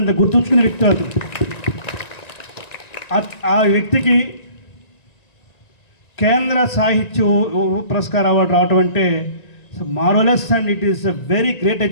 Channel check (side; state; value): right; late; 1.9 ms